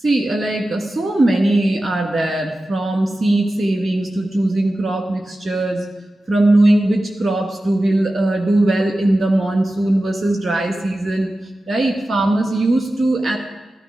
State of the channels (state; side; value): normal; both; correlation 0.94